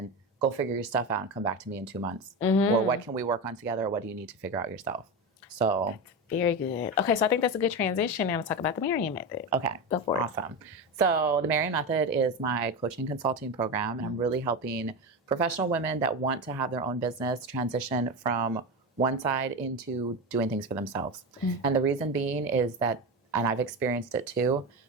Go figure your stuff out and come back to me in 2 months. Or what can we work on together, or what do you need to figure out yourself? So that's very good. Okay, so I think that's a good transition now to talk about the Marian Method. Okay, go for it. Awesome. So the Marian Method is my coaching consulting program, and I'm really helping professional women that want to have their own business transition from one side into doing things for themselves. And the reason being is that, and I've experienced it too,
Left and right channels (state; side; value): normal; both; correlation 0.19